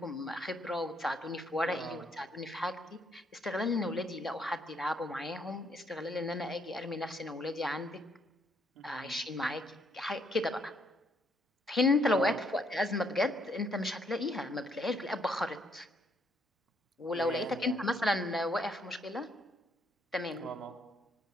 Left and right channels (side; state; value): both; normal; correlation 0.71